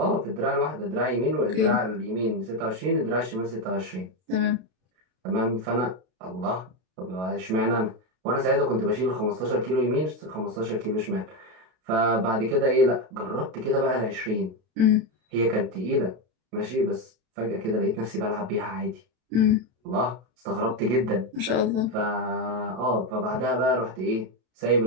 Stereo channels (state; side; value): late; left; 32 ms